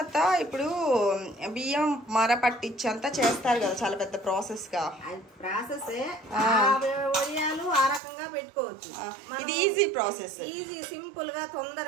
ఇప్పుడు బియ్యం మర పట్టించి అంతా చేస్తారు కదా, చాలా పెద్ద ప్రాసెస్ గా. వడియాలు ఆ రకంగా పెట్టుకోవచ్చు. ఇది ఈజీ ప్రాసెస్, ఈజీ సింపుల్ గా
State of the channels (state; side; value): drops out; left; at 8.0 s